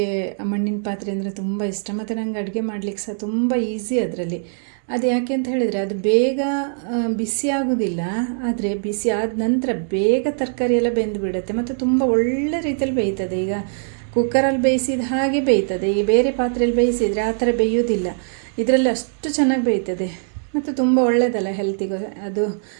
ಮಣ್ಣಿನ ಪಾತ್ರೆ ಅಂದರೆ ತುಂಬ ಇಷ್ಟ, ಮತ್ತು ನನಗೆ ಅಡುಗೆ ಮಾಡಲಿಕ್ಕೆ ಸಹ ತುಂಬ ಈಸಿ ಅದರಲ್ಲಿ. ಅದು ಯಾಕೆ ಅಂತ ಹೇಳಿದರೆ, ಅದು ಬೇಗ ಬಿಸಿ ಆಗೋದಿಲ್ಲ, ಆದರೆ ಬಿಸಿ ಆದ ನಂತರ ಬೇಗ ತರಕಾರಿ ಎಲ್ಲ ಬೆಂದು ಬಿಡುತ್ತೆ, ಮತ್ತು ತುಂಬ ಒಳ್ಳೆ ರೀತಿಯಲ್ಲಿ ಬೇಯ್ತದೆ. ಈಗ ಕುಕ್ಕರಲ್ಲಿ ಬೇಯಿಸಿದ ಹಾಗೆ ಬೇಯ್ತದೆ. ಈ ಬೇರೆ ಪಾತ್ರೆಯಲ್ಲಿ ಬೇಯಿಸಿದರೆ ಆ ಥರ ಬೇಯೋದಿಲ್ಲ. ಇದರಲ್ಲಿ ಅಷ್ಟು ಚೆನ್ನಾಗಿ ಬೇಯ್ತದೆ, ಮತ್ತು ತುಂಬ ಒಳ್ಳೆಯದಲ್ಲ ಹೆಲ್ತಿಗೂ ಅದು.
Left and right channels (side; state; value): left; silent; digital silence